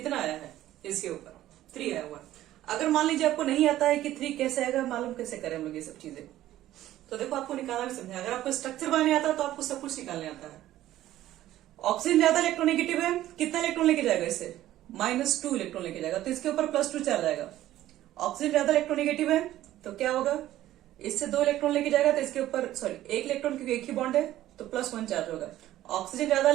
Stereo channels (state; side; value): quieter; left; 14.0 dB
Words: आया है, इसके ऊपर 3 आया हुआ। अगर मान लीजिए आपको नहीं आता है कि 3 कैसे आएगा, मालूम कैसे करें हम लोग ये सब चीजें, तो देखो आपको निकालना भी समझे। अगर आपको स्ट्रक्चर बनाने आता है तो आपको सब कुछ निकालने आता है। ऑक्सीजन ज्यादा इलेक्ट्रोनेगेटिव है, कितना इलेक्ट्रॉन लेके जाएगा इसे, -2 इलेक्ट्रॉन लेके जाएगा, तो इसके ऊपर +2 चार्ज आएगा। ऑक्सीजन ज्यादा इलेक्ट्रोनेगेटिव है तो क्या होगा, इससे 2 इलेक्ट्रॉन लेके जाएगा तो इसके ऊपर 1 इलेक्ट्रॉन, क्योंकि एक ही बॉन्ड है तो +1 चार्ज होगा। ऑक्सीजन ज्यादा